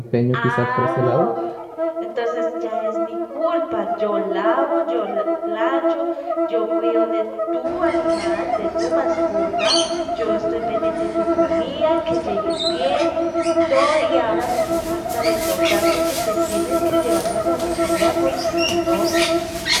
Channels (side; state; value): both; identical; correlation 1.00